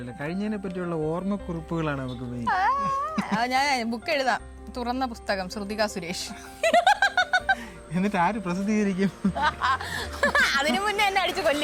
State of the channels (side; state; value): both; identical; correlation 1.00